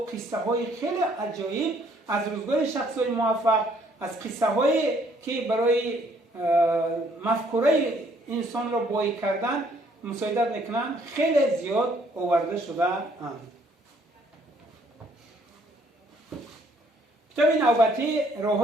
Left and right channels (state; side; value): normal; both; correlation 0.65